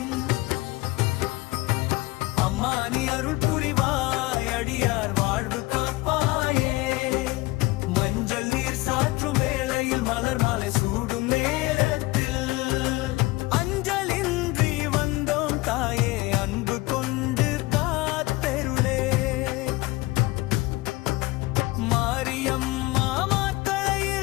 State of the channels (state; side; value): quieter; right; 21.0 dB